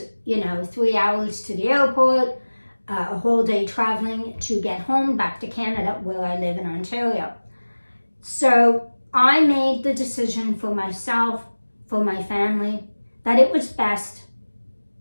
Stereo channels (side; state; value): both; inverted; correlation -1.00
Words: 3 hours to the airport, a whole day traveling to get home back to Canada, where I live in Ontario. So I made the decision for myself, for my family, that it was best